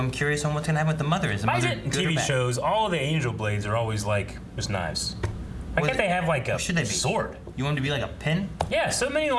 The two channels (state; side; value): identical; both; correlation 1.00